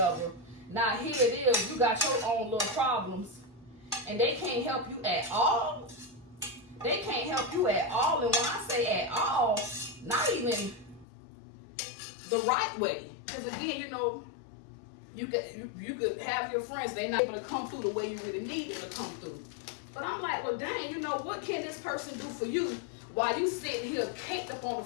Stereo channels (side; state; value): right; drops out; at 11.1 s